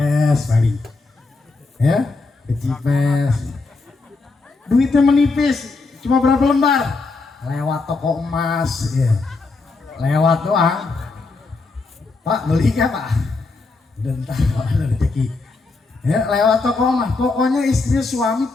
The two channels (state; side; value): quieter; right; 3.8 dB